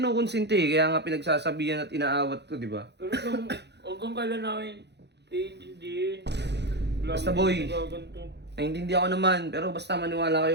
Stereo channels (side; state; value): left; late; 0.50 ms